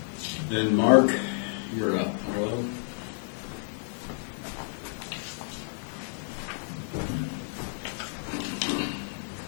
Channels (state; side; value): silent; right; 58 dB below the other